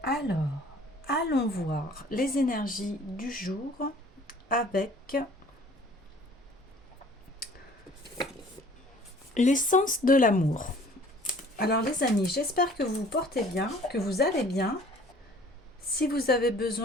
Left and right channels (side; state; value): both; normal; correlation 0.52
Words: Alors, allons voir les énergies du jour avec l'essence de l'amour. Alors les amis, j'espère que vous vous portez bien, que vous allez bien. Si vous avez